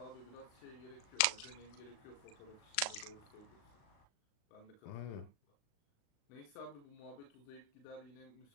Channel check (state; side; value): late; right; 37 ms